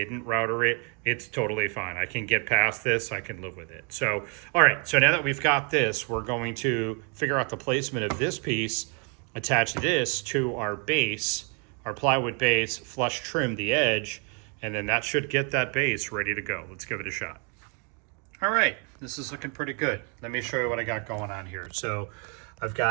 router it. It's totally fine. I can get past this. I can live with it. So, all right. So now that we've got this, we're going to figure out the placement of this piece, attach this to our base, our plywood base, flush trim the edge, and then that should get that base ready to go. Let's give it a shot. All right. This is looking pretty good. Let me show you what I got going on here. So I've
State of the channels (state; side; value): quieter; left; 36.7 dB